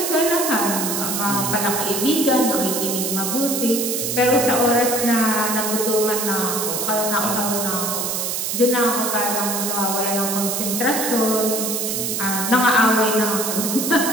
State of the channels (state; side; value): noise; right; hiss, 1 dB below the sound